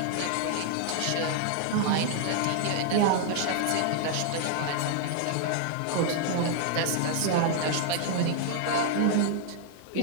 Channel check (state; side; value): different; both; correlation 0.00